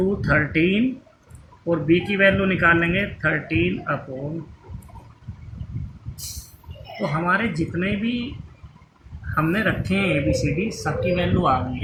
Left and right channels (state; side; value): identical; both; correlation 1.00